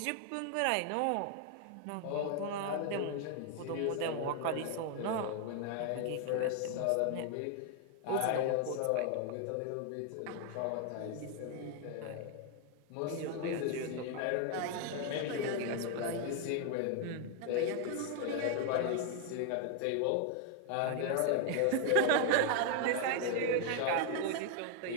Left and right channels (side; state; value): both; different; correlation 0.00